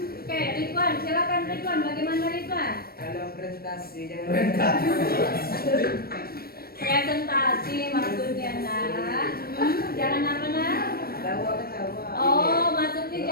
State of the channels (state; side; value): late; right; 0.44 ms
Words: Ridwan, silakan Ridwan. Bagaimana Ridwan? Kalau presentasi jangan Presentasi maksudnya nak. Jangan apa nak? ketawa. Oh, maksudnya